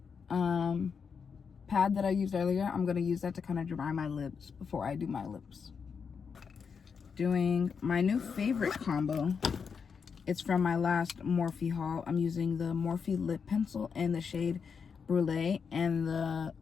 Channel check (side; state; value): right; quieter; 6.1 dB